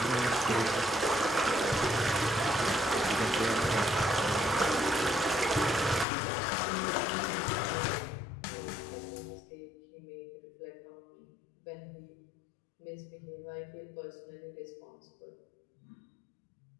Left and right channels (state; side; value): drops out; right; at 6.1 s